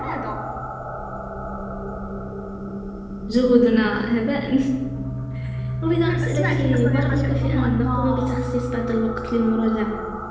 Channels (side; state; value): both; identical; correlation 1.00